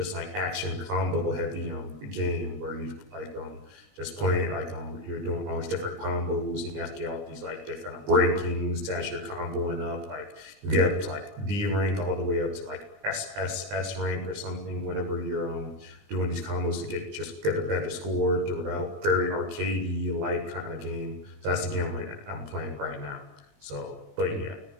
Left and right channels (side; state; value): left; late; 20 ms